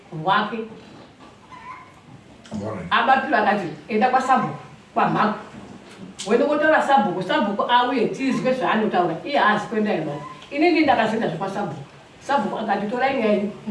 rwake. Abapiro akati, enda kwaSabhuku, kwamhako. Wende kotaura Sabhuku, Sabhuku auye tizwe zvaanotaura, iye haazi kuenda imani. Inini ndakazoenda zvekwaSabhuku. Sabhuku akati, torai nyaya yenyu,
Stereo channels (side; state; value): both; identical; correlation 1.00